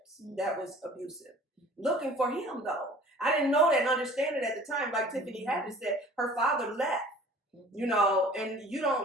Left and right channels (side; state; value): both; normal; correlation 0.48